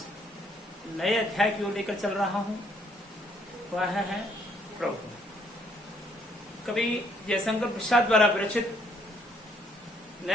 नए अध्याय की ओर लेकर चल रहा हूं। वह है प्रभु। कवि जयशंकर प्रसाद द्वारा विरचित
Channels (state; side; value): normal; both; correlation 0.67